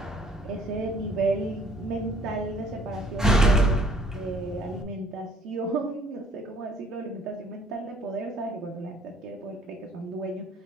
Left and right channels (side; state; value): both; normal; correlation 0.58